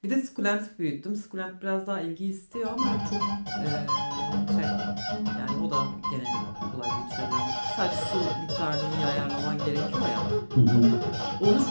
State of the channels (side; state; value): both; inverted; correlation -1.00